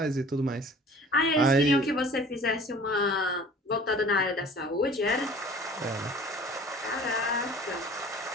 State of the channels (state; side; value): normal; both; correlation 0.47